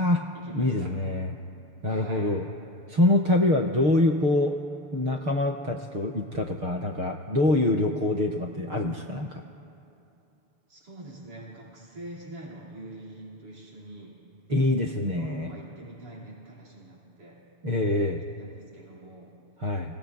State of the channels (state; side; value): late; left; 6.6 ms